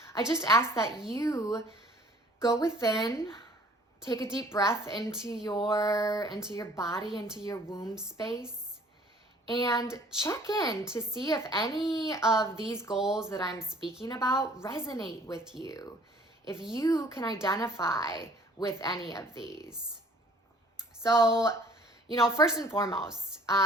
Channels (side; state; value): both; normal; correlation 0.55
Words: I just ask that you go within, take a deep breath into your body, into your womb space, and check in to see if any of these goals that I'm speaking about resonate with you, if you can identify with any of these. So, first and foremost,